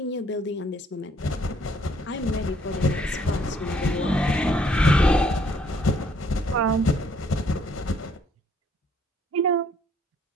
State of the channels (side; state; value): both; normal; correlation 0.65